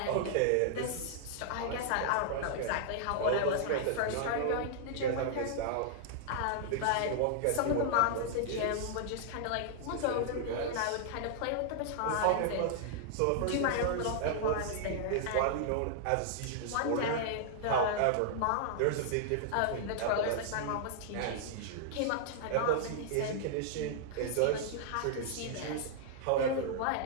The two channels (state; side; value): different; both; correlation -0.01